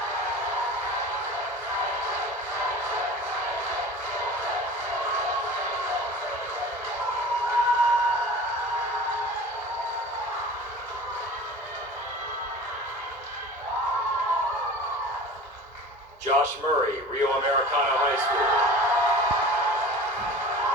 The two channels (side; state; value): both; normal; correlation 0.39